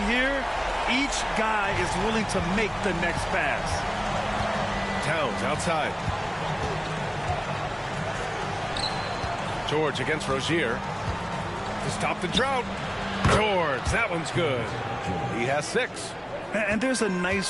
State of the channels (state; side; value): identical; both; correlation 1.00